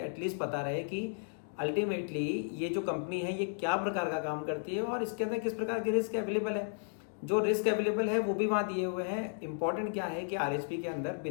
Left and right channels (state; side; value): silent; right; digital silence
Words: पता रहे कि अल्टीमेटली ये जो कंपनी है ये क्या प्रकार का काम करती है और इसके अंदर किस प्रकार के रिस्क अवेलेबल है। जो रिस्क अवेलेबल है वो भी वहाँ दिए हुए हैं। इंपॉर्टेंट क्या है कि आरएचपी के अंदर